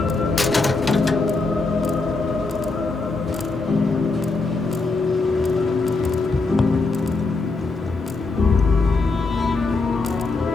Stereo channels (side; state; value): right; quieter; 3.7 dB